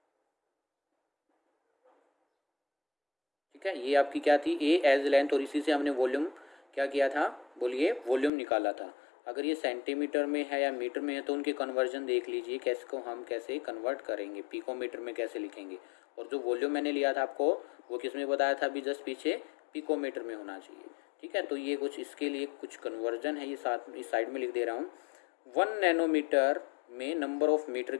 ठीक है, ये आपकी क्या थी, ए एज लेंथ। और इसी से हमने वॉल्यूम क्या किया था, बोलिए, वॉल्यूम निकाला था। अगर ये सेंटीमीटर में है या मीटर में है तो उनके कन्वर्जन देख लीजिए, कैसे को हम कैसे कन्वर्ट करेंगे, पिकोमीटर में कैसे लिखेंगे। और जो वॉल्यूम मैंने लिया था आपको, वो किस में बताया था अभी जस्ट पीछे, पिकोमीटर में होना चाहिए, ठीक है। तो ये कुछ इसके लिए कुछ कन्वर्जन है, ये साथ इस साइड में लिख दे रहा हूँ। 1 नैनोमीटर में नंबर ऑफ मीटर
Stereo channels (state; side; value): drops out; right; at 8.3 s